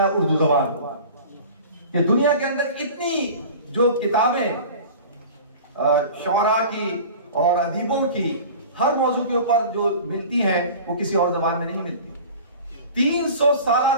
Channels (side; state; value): both; inverted; correlation -0.39